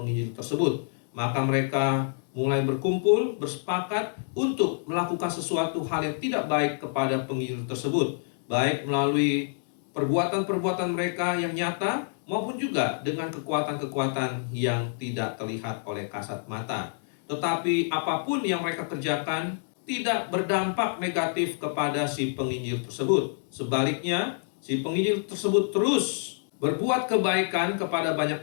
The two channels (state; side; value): silent; right; digital silence